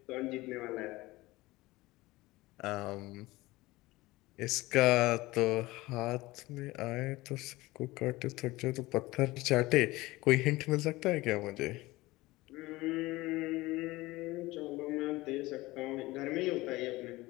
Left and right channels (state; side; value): quieter; right; 19.8 dB